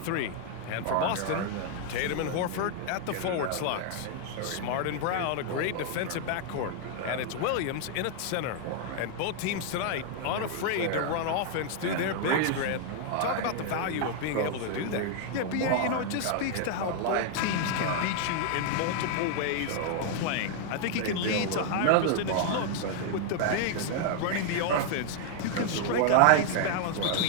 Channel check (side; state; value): both; different; correlation 0.00